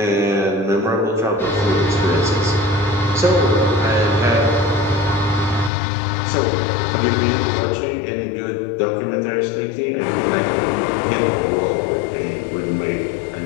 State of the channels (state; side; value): drops out; right; at 5.7 s